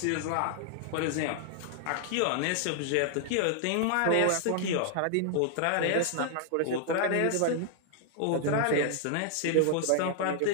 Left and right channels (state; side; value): different; both; correlation 0.00